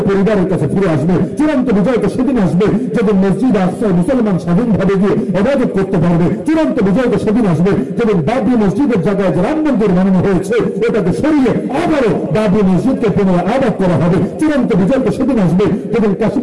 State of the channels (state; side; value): identical; both; correlation 1.00